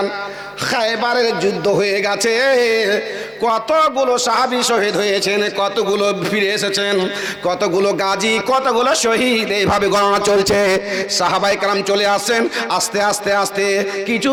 খায়বারের যুদ্ধ হয়ে গেছে, কতগুলো সাহাবী শহীদ হয়েছেন, কতগুলো ফিরে এসেছেন, কতগুলো গাজী, কতগুলো শহীদ, এইভাবে গণনা চলছে। সাহাবাই কেরাম চলে আসছেন। আস্তে আস্তে আস্তে কিছু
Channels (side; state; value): both; identical; correlation 1.00